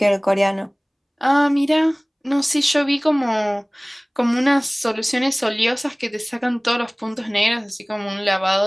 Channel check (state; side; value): identical; both; correlation 1.00